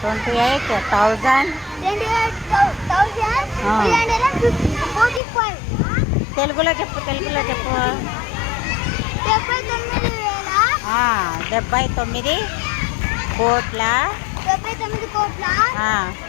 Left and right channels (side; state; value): right; drops out; at 5.2 s